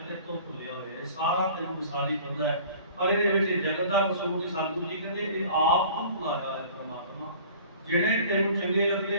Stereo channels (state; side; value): inverted; both; correlation -0.47